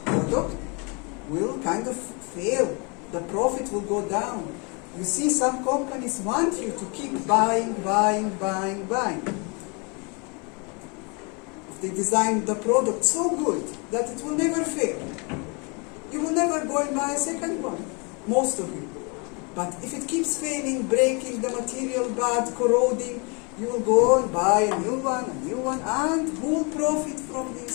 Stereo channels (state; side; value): quieter; right; 32.3 dB